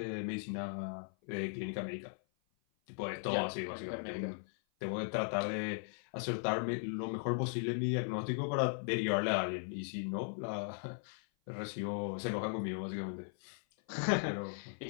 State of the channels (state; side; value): silent; right; 52 dB below the other